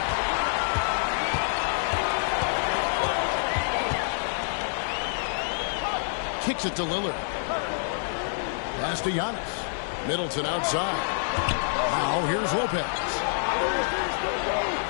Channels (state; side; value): silent; right; digital silence